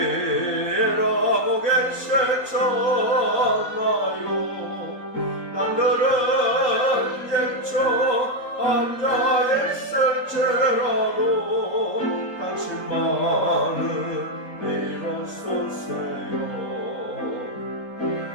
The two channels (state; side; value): late; right; 3.8 ms